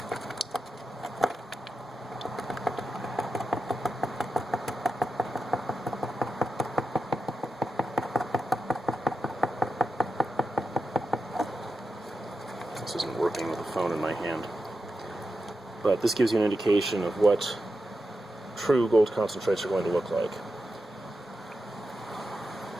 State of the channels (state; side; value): normal; both; correlation 0.90